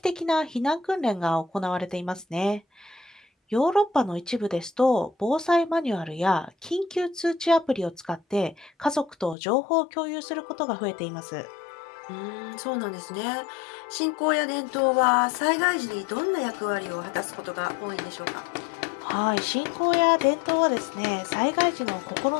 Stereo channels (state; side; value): drops out; right; at 9.3 s